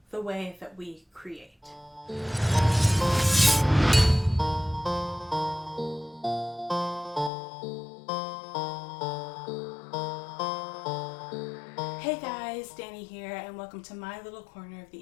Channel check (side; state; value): right; drops out; at 7.3 s